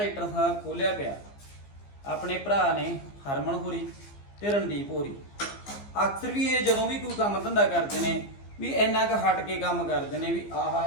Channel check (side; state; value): right; late; 15 ms